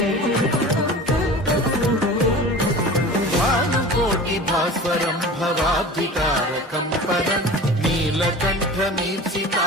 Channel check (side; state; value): both; normal; correlation 0.37